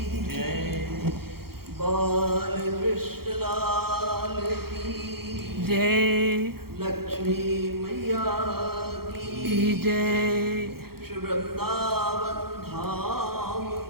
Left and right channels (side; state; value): left; late; 0.94 ms